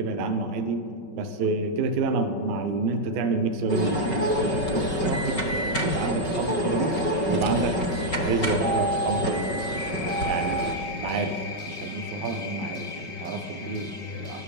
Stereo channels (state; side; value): late; right; 5.3 ms